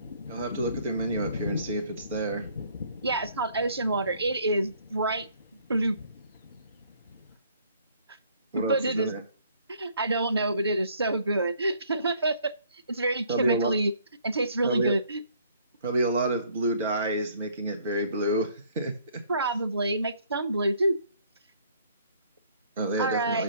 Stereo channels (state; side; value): inverted; both; correlation -0.61